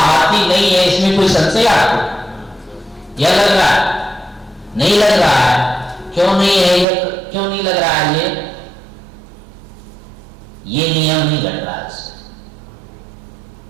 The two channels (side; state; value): left; drops out; at 6.9 s